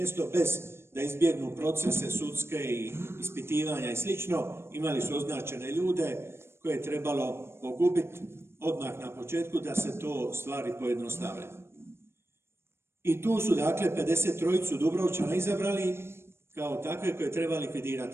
bez da izbjegnu procese sudske i ispitivanja i slično, imali su označene ljude koje je trebalo pogubiti odmah na početku da se to stvari pojednostave. I tu su dakle 53 Dubrovčana izabrali kao takve koje treba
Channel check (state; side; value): late; left; 0.12 ms